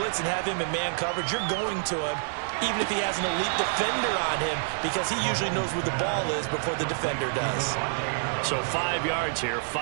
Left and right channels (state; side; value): silent; left; 60 dB below the other